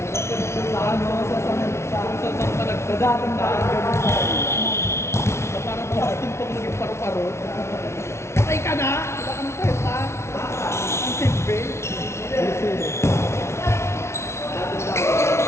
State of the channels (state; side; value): late; right; 0.13 ms